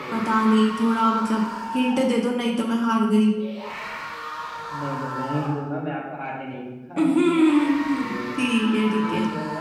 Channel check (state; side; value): identical; both; correlation 1.00